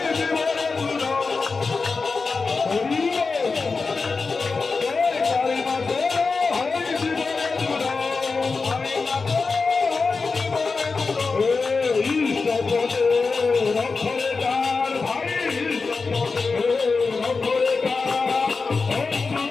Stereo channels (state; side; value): quieter; right; 4.4 dB